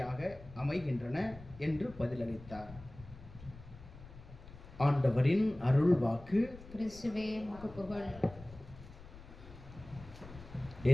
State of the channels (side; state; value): left; noise; rumble, 17 dB below the sound